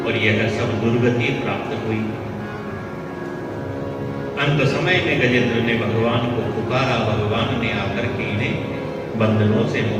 और यह सब दुर्गति प्राप्त हुई। अंत समय में गजेंद्र ने भगवान को पुकारा, भगवान ने आकर के इन्हें बंधनों से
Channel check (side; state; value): both; identical; correlation 1.00